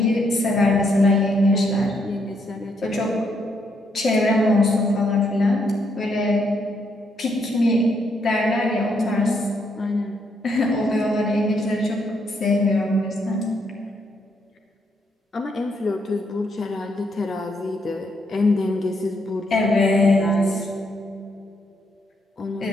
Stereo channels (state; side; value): normal; both; correlation 0.75